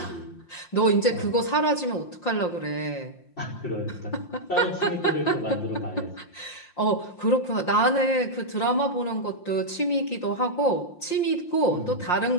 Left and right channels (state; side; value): late; right; 5.7 ms